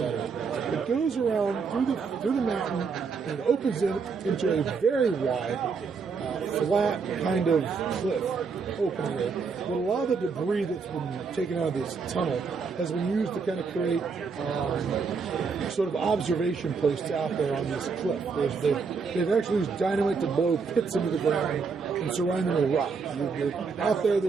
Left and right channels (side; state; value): left; quieter; 5.2 dB